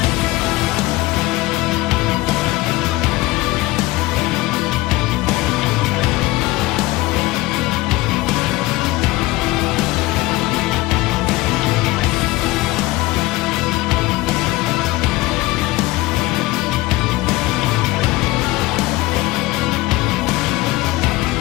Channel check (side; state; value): right; quieter; 19.7 dB